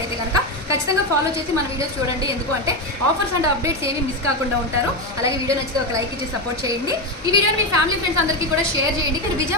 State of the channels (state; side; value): normal; both; correlation 0.12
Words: కనుక ఖచ్చితంగా ఫాలో చేసి మన వీడియోస్ చూడండి. ఎందుకు అంటే ఆఫర్స్ అండ్ అప్డేట్స్ ఏమీ మిస్ కాకుండా ఉంటారు. అలాగే వీడియో నచ్చితే ఒక లైక్ ఇచ్చి సపోర్ట్ చేయండి. ఈ వీడియోని మీ ఫ్యామిలీ ఫ్రెండ్స్ అందరికీ కూడా షేర్ చేయండి. మీరు